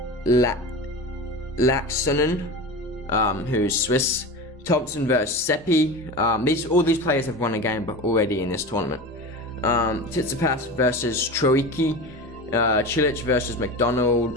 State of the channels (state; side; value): normal; both; correlation 0.29